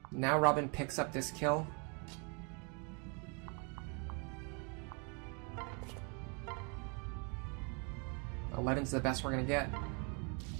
Now Robin picks up this kill. $11's the best we're gonna get.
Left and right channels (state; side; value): quieter; left; 34.1 dB